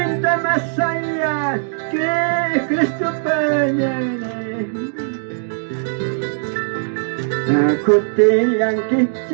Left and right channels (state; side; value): silent; left; digital silence